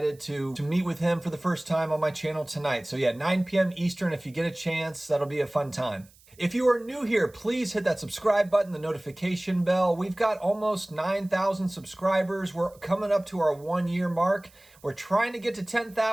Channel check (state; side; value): noise; right; hiss, 28 dB below the sound